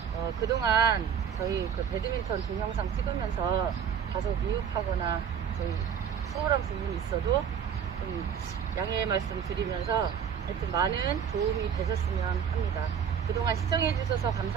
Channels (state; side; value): quieter; left; 7.9 dB